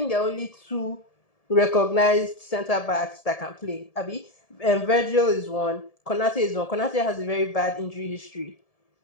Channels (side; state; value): right; late; 1.7 ms